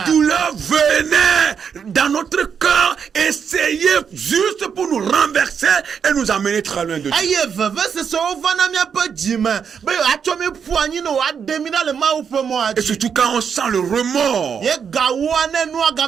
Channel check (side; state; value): left; quieter; 7.0 dB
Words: douleurs venaient dans notre cœur essayer juste pour nous renverser et nous amener très loin de Dieu. Et surtout quand on sent le remords,